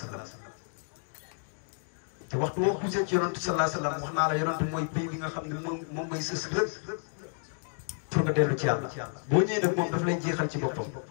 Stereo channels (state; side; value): silent; right; digital silence